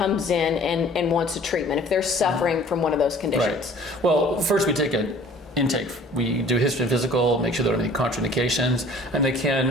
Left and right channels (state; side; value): normal; both; correlation 0.50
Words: in and wants a treatment, if they're suffering from one of those conditions. Right. Well, first we take an intake. We do a history and physical, make sure there aren't any contraindications, and they